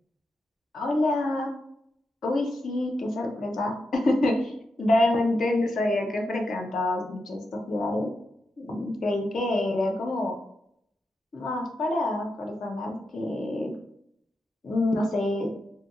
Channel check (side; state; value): both; normal; correlation 0.86